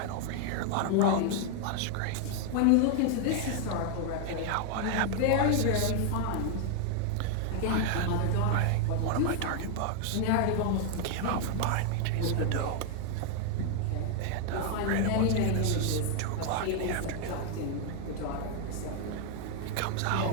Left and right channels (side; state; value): both; different; correlation 0.00